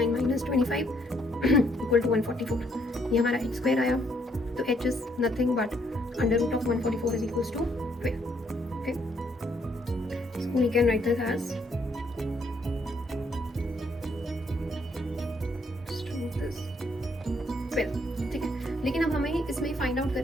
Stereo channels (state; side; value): normal; both; correlation 0.70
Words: minus 25 equal to 144. ये हमारा h स्क्वायर आया. तो h is nothing but under root of 144 is equals to 12. Okay, so we can write this as 12. ठीक है, लेकिन अब हमें इसमें फाइंड आउट